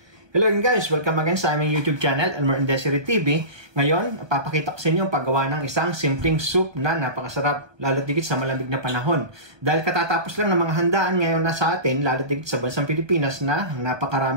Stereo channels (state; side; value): late; left; 1.3 ms